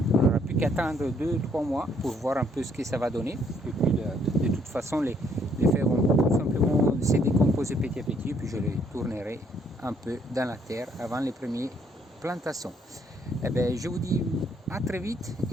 on n'aura plus qu'attendre 2-3 mois pour voir un peu ce que ça va donner. Et puis de toute façon, les feuilles vont tout simplement se décomposer petit à petit. Et puis je les tournerai un peu dans la terre avant les premières plantations. Eh bien, je vous dis à très vite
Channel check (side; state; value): both; normal; correlation 0.68